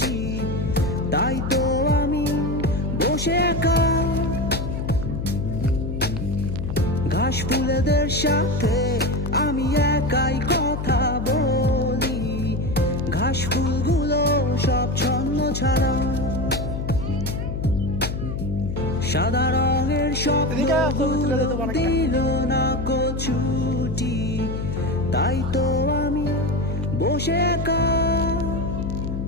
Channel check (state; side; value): noise; left; hum, 4 dB below the sound